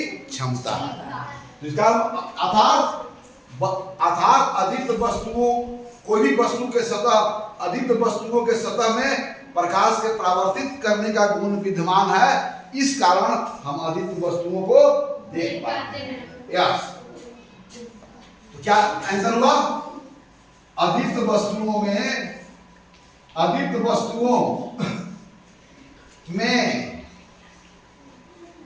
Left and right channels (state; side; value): identical; both; correlation 1.00